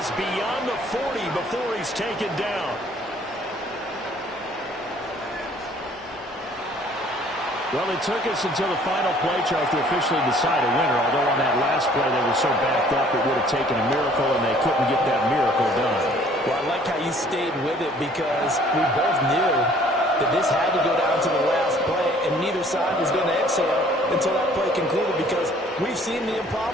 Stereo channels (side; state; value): both; normal; correlation 0.56